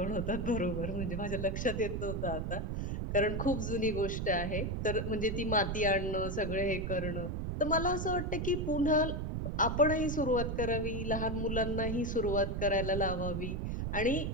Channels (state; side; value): noise; right; rumble, 2 dB below the sound